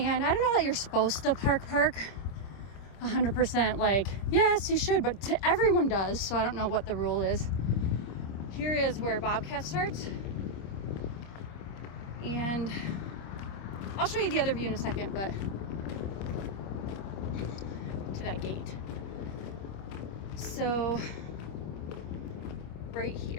I don't know that you're supposed to park 100%, like, yes, you should, but everyone does, so I don't know what the rule is. Here is where Bobcat starts. And I'll show you the other view in a second, but to that gate. So right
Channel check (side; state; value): right; late; 26 ms